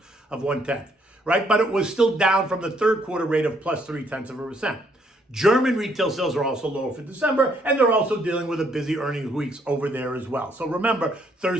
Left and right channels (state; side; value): normal; both; correlation 0.69